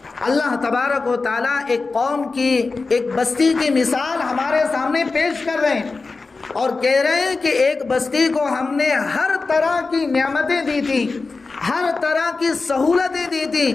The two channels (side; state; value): right; quieter; 4.0 dB